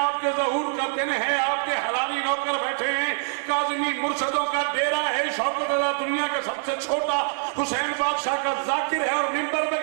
ज़हूर का दिन है, आपके हलाली नौकर बैठे हैं, काज़मी मुर्शदों का डेरा है, शौकत रज़ा दुनिया का सबसे छोटा हुसैन बादशाह का जाकिर है, और मिंबर पे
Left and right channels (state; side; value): silent; left; 62 dB below the other